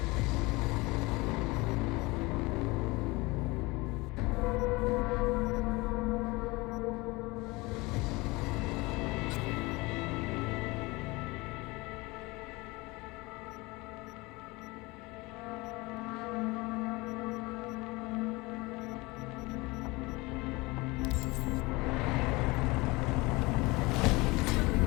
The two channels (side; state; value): right; quieter; 23.5 dB